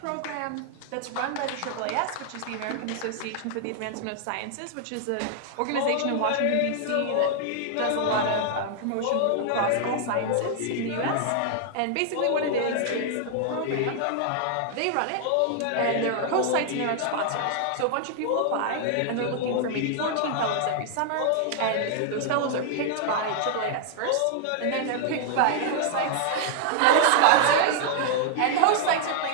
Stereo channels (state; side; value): different; both; correlation 0.00